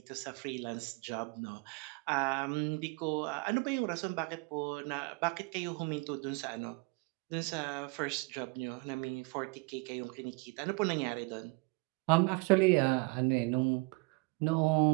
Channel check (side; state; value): left; quieter; 28.0 dB